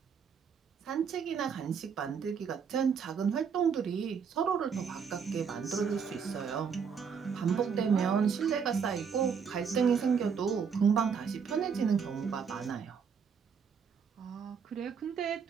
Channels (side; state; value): left; quieter; 6.5 dB